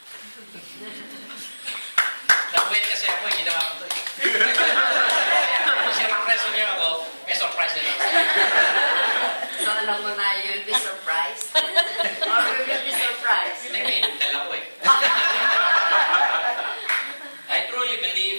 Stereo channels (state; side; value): inverted; both; correlation -1.00